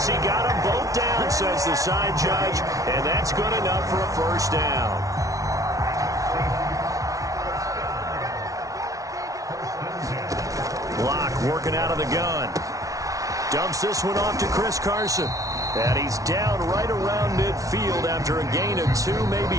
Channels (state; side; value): late; left; 0.17 ms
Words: he got them both down, says the side judge. And that's good enough for a 1st down. Locke working out of the gun. Dumps this one off to Chris Carson. And he's down right around midfield after a gain of 2,